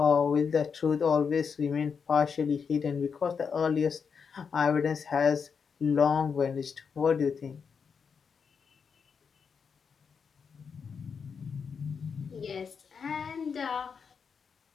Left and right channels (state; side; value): quieter; right; 6.1 dB